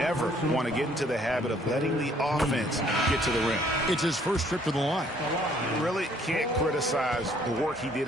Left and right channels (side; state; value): both; normal; correlation 0.62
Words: want to get into the habit of letting the offense get to the rim. It's his first trip to the line. You really can't criticize the work he did